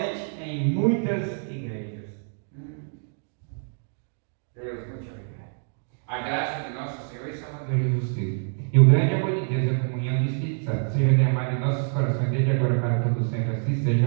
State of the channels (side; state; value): left; silent; 61 dB below the other